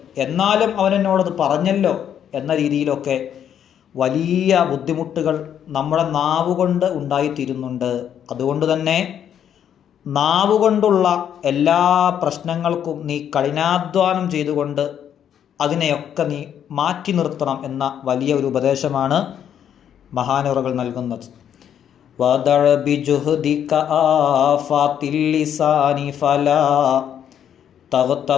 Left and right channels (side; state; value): right; quieter; 9.3 dB